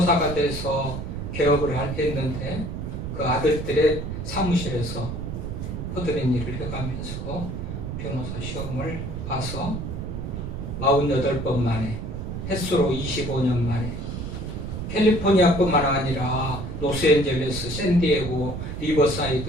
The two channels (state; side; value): noise; right; rumble, 5 dB below the sound